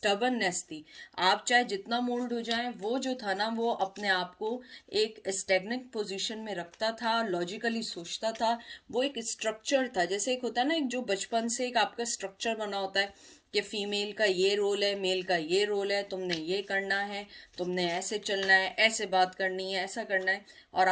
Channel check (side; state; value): both; identical; correlation 1.00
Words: थी। आप चाहे जितना मोल्ड हो जाए, वो जो था ना वो अपने आप को एक स्टेगनेंट पोजीशन में रखता था, लॉजिकली सोचता था। वो एक स्ट्रक्चर था, जैसे एक होता है ना, एक जो बचपन से एक आपका स्ट्रक्चर बना होता है कि फीमेल का ये रोल है, मेल का ये रोल है, तुमने ये करना है, तुमने ऐसे चलना है, ऐसे बात करनी है, ऐसा करना है। और